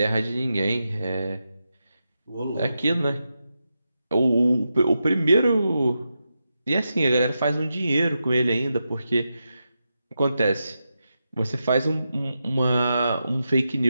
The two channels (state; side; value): inverted; both; correlation -0.88